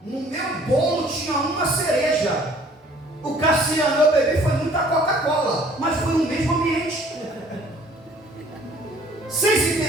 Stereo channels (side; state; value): both; normal; correlation 0.55